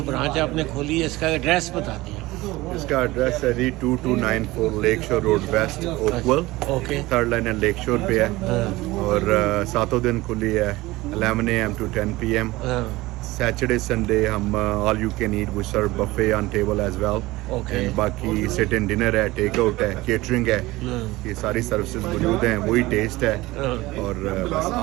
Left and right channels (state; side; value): quieter; left; 19.5 dB